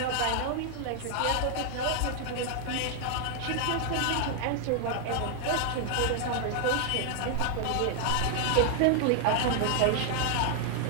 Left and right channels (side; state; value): both; different; correlation 0.00